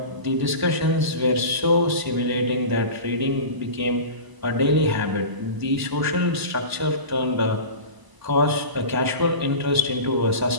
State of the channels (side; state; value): left; late; 1.0 ms